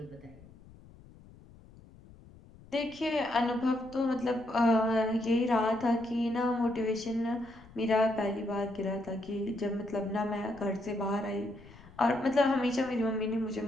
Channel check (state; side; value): noise; left; rumble, 22 dB below the sound